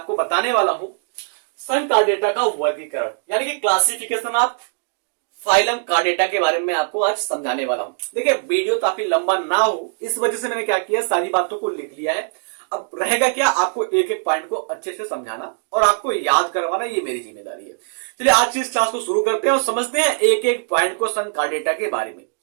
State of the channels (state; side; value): silent; left; digital silence